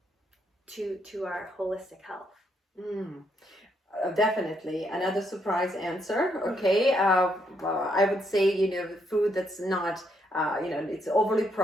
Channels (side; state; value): both; normal; correlation 0.75